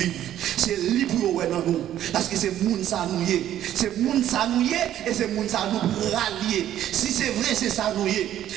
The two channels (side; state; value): left; quieter; 11.7 dB